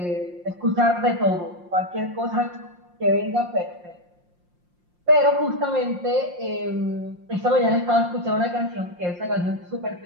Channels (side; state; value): left; late; 5.7 ms